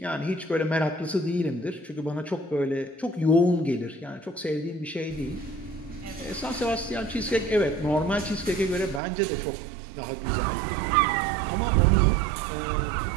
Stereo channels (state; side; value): drops out; left; at 9.0 s